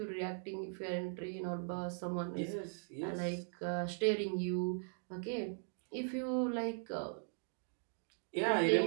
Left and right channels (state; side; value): silent; left; digital silence